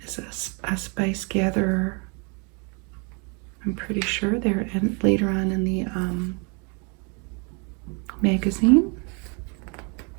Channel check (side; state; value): left; quieter; 33.4 dB